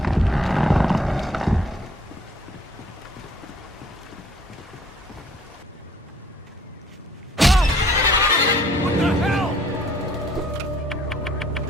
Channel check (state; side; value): normal; both; correlation 0.59